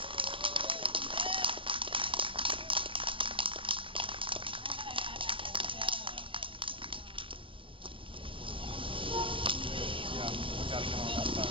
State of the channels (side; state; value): left; late; 0.25 ms